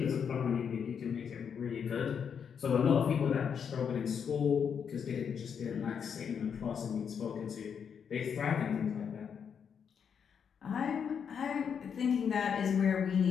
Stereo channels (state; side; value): quieter; right; 7.2 dB